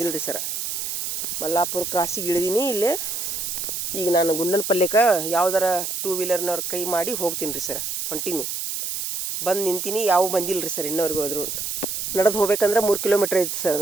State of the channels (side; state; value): right; noise; hiss, 3 dB below the sound